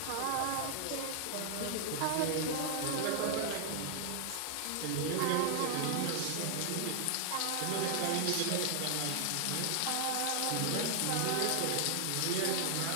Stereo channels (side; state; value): both; different; correlation 0.00